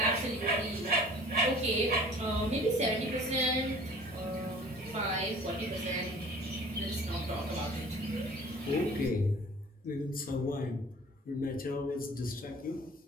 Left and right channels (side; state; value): both; normal; correlation 0.48